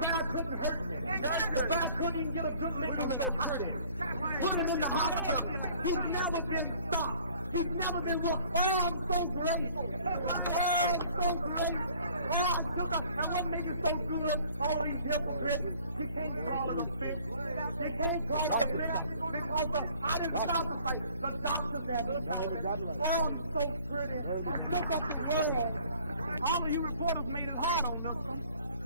couldn't hurt me. The guy couldn't even get a good lick. I'm so pretty. Put him in the hospital. He's never been stopped. He's never been wrong. Oh, I'm so great. Oh, I'm so great. Oh, I shook up. And what makes it so good, all of these hypocrites, you can't call it a fix. You can't call it a fix because I didn't stop the fight. The doctors had to stop it. Oh, I'm so pretty. I shook up the world. All of you reporters made it hard on Liston.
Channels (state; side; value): inverted; both; correlation -0.55